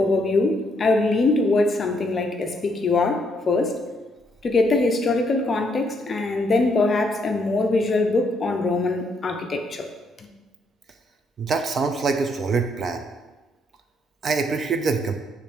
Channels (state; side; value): normal; both; correlation 0.73